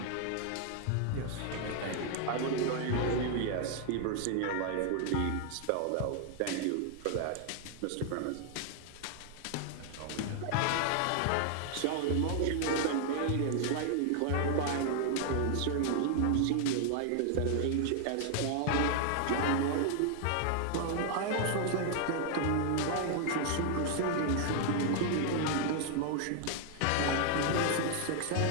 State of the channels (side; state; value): both; different; correlation 0.00